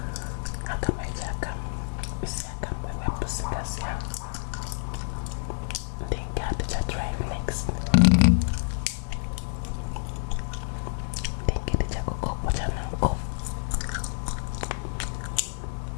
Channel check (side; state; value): right; silent; 59 dB below the other